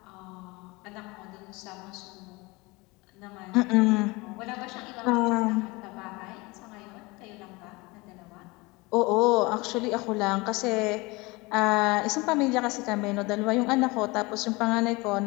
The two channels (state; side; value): quieter; right; 24.1 dB